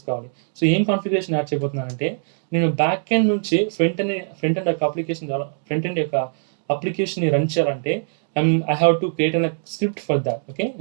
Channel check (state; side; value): silent; left; digital silence